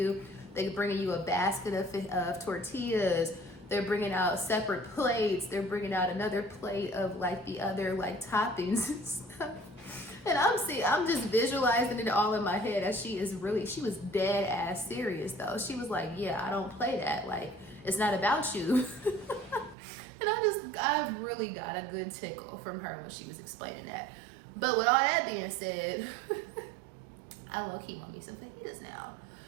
they're bringing you a basket of tortillas, they're bringing out separate plates, they're bringing out another plate of like the other like toppings and stuff. And I'm just visualizing it all in my head, as she was dead ass serious though. She was like, yeah, I don't play that, like, it's not about you. And I really got a good tickle from her when she was explaining that. But with all that being said, I low-key want me some fajitas now.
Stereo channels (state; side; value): drops out; left; at 19.8 s